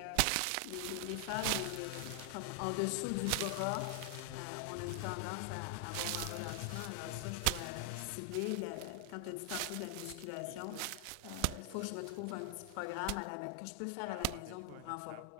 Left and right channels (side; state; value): both; different; correlation 0.00